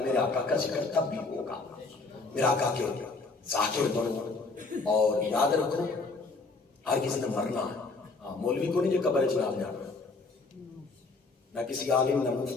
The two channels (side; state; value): right; quieter; 3.8 dB